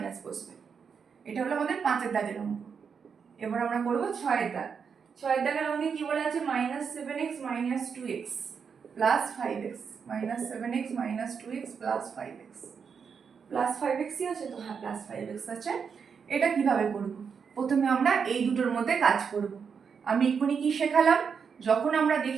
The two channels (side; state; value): left; quieter; 6.3 dB